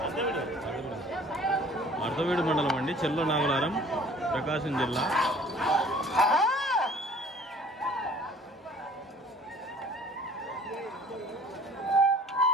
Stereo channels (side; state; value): both; normal; correlation 0.51